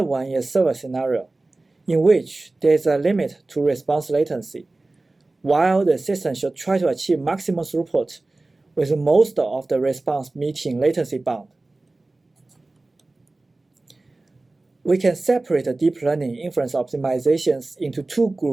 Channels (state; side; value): quieter; left; 3.1 dB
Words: one is server scenario, in which there is a limit to response latency, while the system should try to achieve maximum throughput with most of the response meeting latency bound. We can separate the deep learning inference optimizations into two